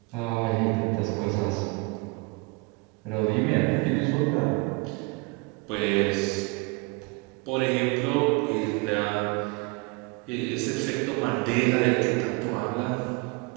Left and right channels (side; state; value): left; quieter; 27.0 dB